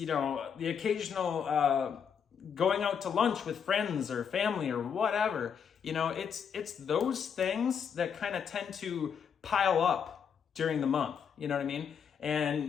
occasional going out to lunch with friends or family or whatever. It's those things that kind of tend to pile up during the month. You know what I mean?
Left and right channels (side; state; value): right; quieter; 7.3 dB